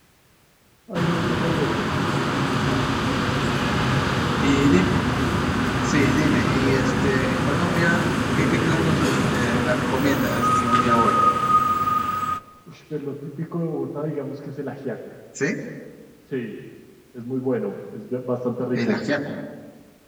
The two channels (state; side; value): identical; both; correlation 1.00